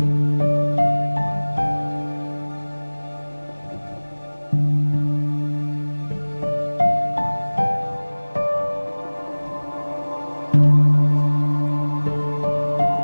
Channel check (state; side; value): inverted; both; correlation -1.00